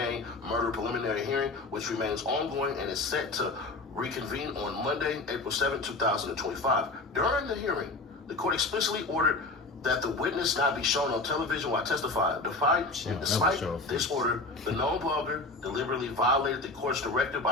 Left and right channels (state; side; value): quieter; right; 3.2 dB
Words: murder preliminary hearing, which remains ongoing and is set to reconvene on Monday, April 7, 2025. During the hearing, the court explicitly ordered that the witness not be shown on television while testifying. Despite this order, the known blogger deliberately violated the court's directive